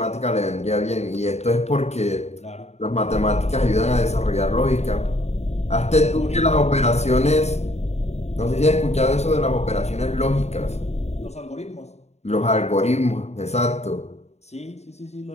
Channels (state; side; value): late; right; 0.32 ms